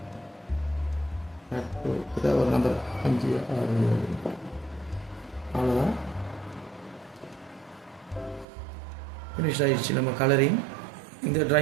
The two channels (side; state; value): left; drops out; at 8.5 s